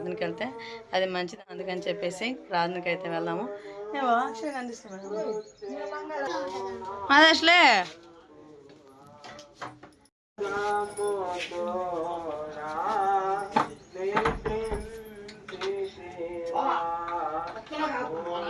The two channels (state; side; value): identical; both; correlation 1.00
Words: వెళ్తే అది మంచిది. అందుకని చెప్పేసి ప్రార్థనకి అయితే వెళ్దాము. అదే అసలే